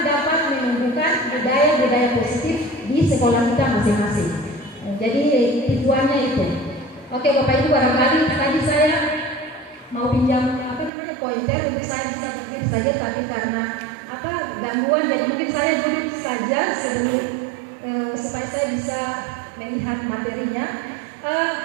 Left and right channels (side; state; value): left; drops out; at 10.9 s